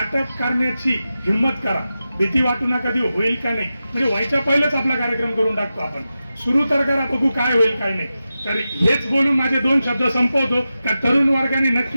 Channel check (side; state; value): both; inverted; correlation -0.92